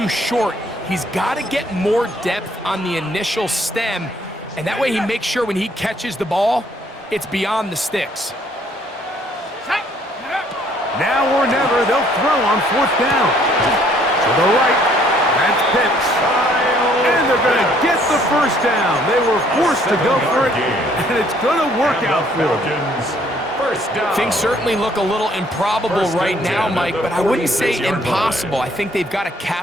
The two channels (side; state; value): both; normal; correlation 0.63